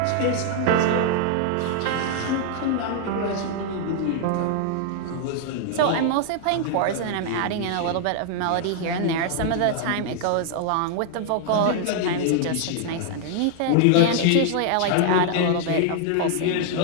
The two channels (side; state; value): both; different; correlation 0.00